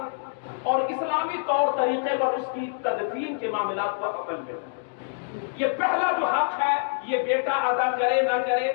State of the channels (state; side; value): silent; right; digital silence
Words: اور اسلامی طور طریقے پر اس کی تدفین کے معاملات کو عمل دے۔ یہ پہلا جو حق ہے یہ بیٹا ادا کرے نہ کرے،